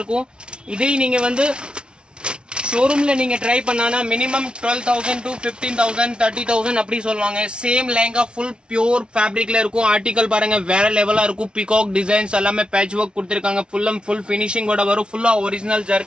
இதே நீங்க வந்து ஷோரூம்ல நீங்க ட்ரை பண்ணானா மினிமம் 12000 to 15000 30000 அப்படி சொல்லுவாங்க சேம் லெஹங்கா ஃபுல் பியூர் ஃபேப்ரிக்ல இருக்கும் ஆர்டிகல் பாருங்க வேற லெவலா இருக்கும் பீகாக் டிசைன்ஸ் எல்லாமே பேட்ச் ஒர்க் கொடுத்திருக்காங்க ஃபுல் ஃபினிஷிங்கோட வரும் ஃபுல்லா ஒரிஜினல்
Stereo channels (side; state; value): left; late; 0.056 ms